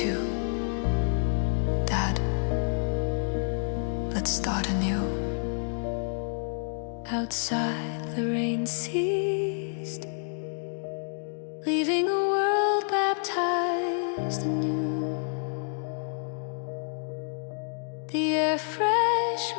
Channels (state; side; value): silent; right; digital silence